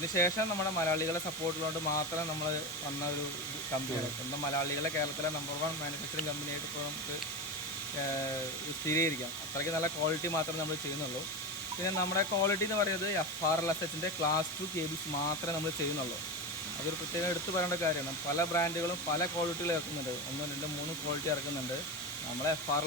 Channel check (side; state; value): both; normal; correlation 0.20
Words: നമ്മുടെ മലയാളികളെ സപ്പോർട്ടുള്ളതുകൊണ്ട് മാത്രം നമ്മൾ വന്ന ഒരു കമ്പനിയാണ്. സ്വന്തം മലയാളികളെ കേരളത്തിലെ നമ്പർ 1 മാനുഫാക്ചറിങ് കമ്പനിയായിട്ട് ഇപ്പോൾ നമുക്ക് സ്ഥിരീകരിക്കാം. അത്രയ്ക്ക് നല്ല ക്വാളിറ്റി മാത്രമേ നമ്മൾ ചെയ്യുന്നുള്ളൂ. പിന്നെ നമ്മുടെ ക്വാളിറ്റി എന്ന് പറയുന്നത് FRLSHൻ്റെ ക്ലാസ് 2 കേബിൾസ് മാത്രമേ നമ്മൾ ചെയ്യുന്നുള്ളൂ. അതൊരു പ്രത്യേകം എടുത്തു പറയേണ്ട കാര്യമാണ്. പല ബ്രാൻഡുകളും പല ക്വാളിറ്റികൾ ഇറക്കുന്നുണ്ട്. 1, 2, 3 ക്വാളിറ്റി ഇറക്കുന്നുണ്ട്. നമ്മൾ